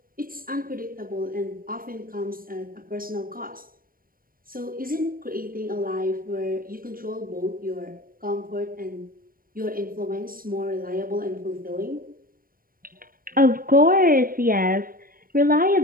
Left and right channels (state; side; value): late; left; 0.41 ms